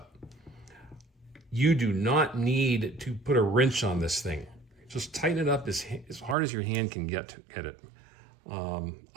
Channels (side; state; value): left; drops out; at 6.4 s